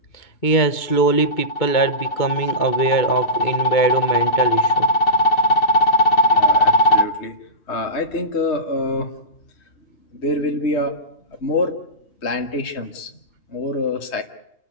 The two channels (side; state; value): right; late; 2.2 ms